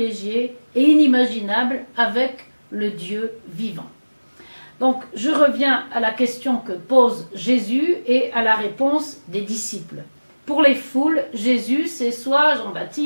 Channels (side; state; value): both; inverted; correlation -1.00